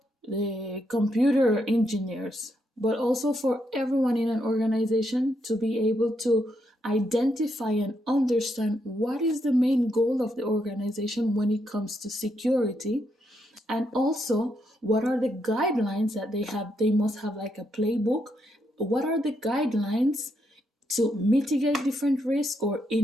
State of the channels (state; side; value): normal; both; correlation 0.79